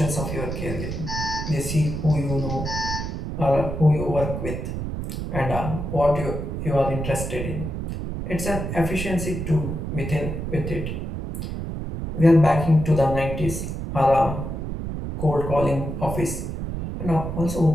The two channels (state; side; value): noise; right; rumble, 5 dB below the sound